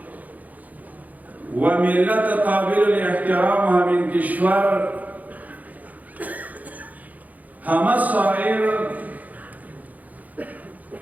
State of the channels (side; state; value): left; late; 0.078 ms